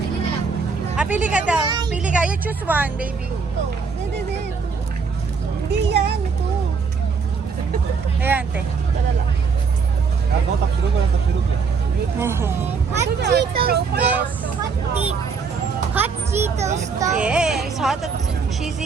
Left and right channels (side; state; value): left; quieter; 5.3 dB